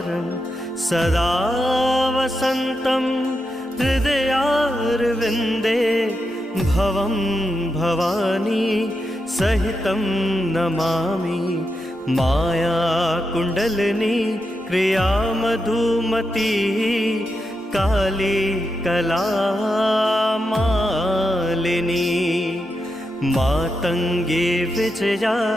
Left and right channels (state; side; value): normal; both; correlation 0.86